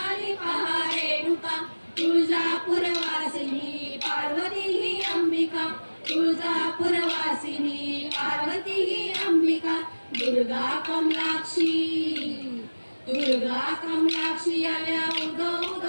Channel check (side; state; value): both; inverted; correlation -1.00